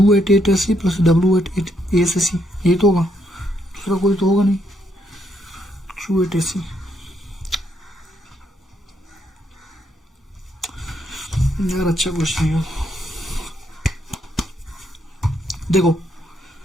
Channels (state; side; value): normal; both; correlation 0.75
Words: at A to C + W at A से C, ये तो होगा, दूसरा कोई तो होगा नहीं, Q at A C। यार अच्छा क्वेश्चन है, देखो